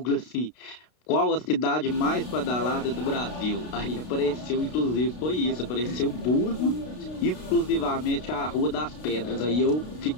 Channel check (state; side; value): late; right; 32 ms